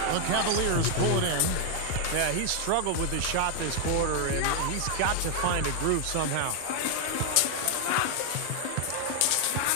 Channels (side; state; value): both; different; correlation 0.00